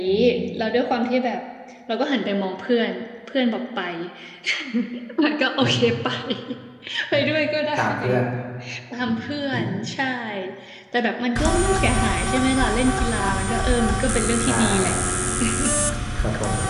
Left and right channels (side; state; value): both; identical; correlation 1.00